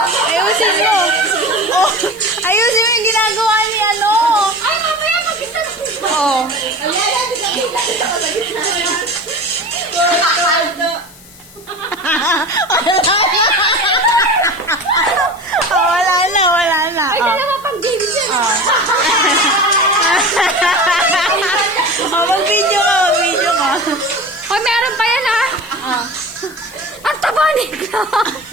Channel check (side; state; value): left; noise; hiss, 22 dB below the sound